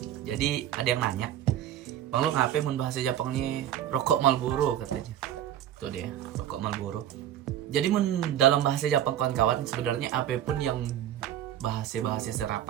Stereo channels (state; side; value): quieter; left; 11.2 dB